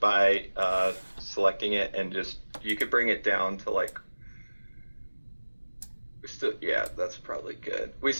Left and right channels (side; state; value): both; inverted; correlation -1.00